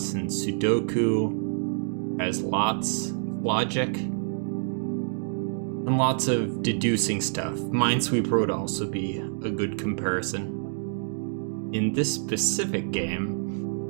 and Sudoku, has lots of logic, and lots of deducing stuff. Minesweeper would also be a good comparison. In this specific game,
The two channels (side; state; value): left; silent; digital silence